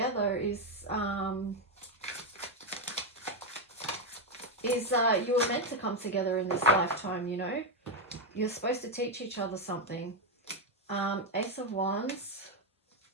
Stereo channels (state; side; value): normal; both; correlation 0.05